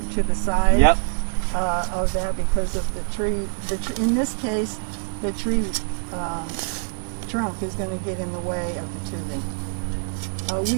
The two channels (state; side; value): silent; left; 62 dB below the other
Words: the side Yep. of that, because of the tree. In this case, the tree trunk is going to get in the way of the tubing.